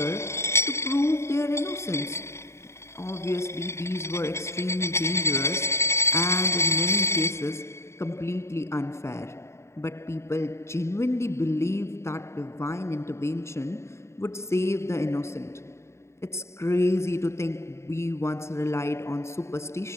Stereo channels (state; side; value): late; right; 0.13 ms